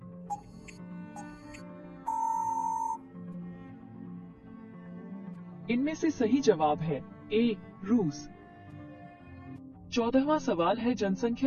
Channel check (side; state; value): both; identical; correlation 1.00